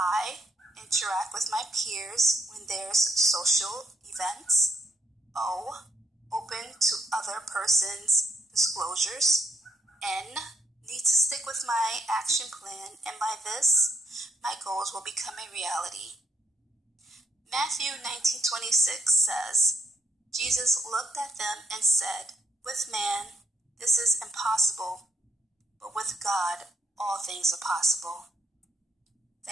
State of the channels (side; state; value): both; normal; correlation 0.73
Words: Interact with my peers when there's social events. O. Open to other person's disclosures. N. Need to stick with my action plan, and by this, my goals will become a reality. Matthew 19:26 says, Jesus looked at them and said, with man, This is impossible, but with God, all things are possible.